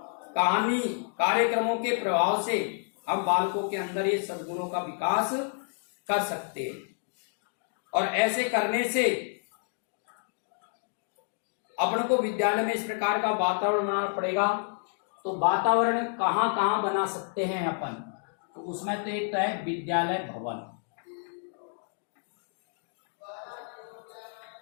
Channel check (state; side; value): silent; right; 58 dB below the other